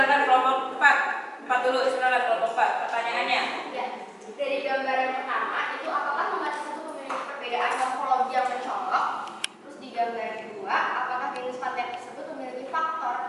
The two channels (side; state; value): both; identical; correlation 1.00